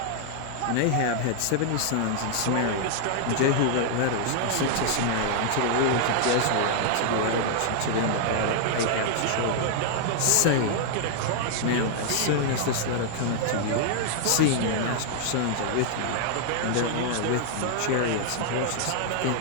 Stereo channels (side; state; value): both; different; correlation -0.01